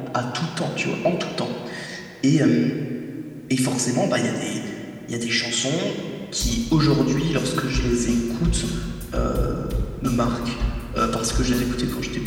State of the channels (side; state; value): both; identical; correlation 1.00